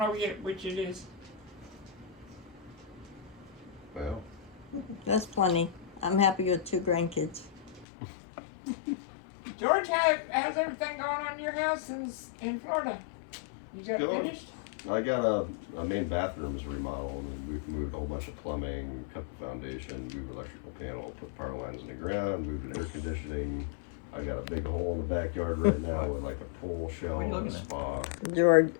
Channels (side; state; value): right; drops out; at 7.9 s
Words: yet which it is. Well, That's plenty. I'm happy with 2 grandkids. George, how's everything going on in your house in Florida? Is that Go on. finished? I got a main bathroom's remodeled, and we've moved a whole bunch of plumbing, cut the foundation, moved electrical panel, put power lines in the ground, moved air conditioning. I got a big hole in the backyard right now with like a pool shell and a spa, George,